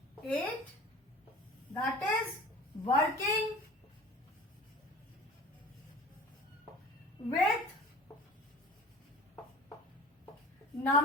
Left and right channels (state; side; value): normal; both; correlation 0.42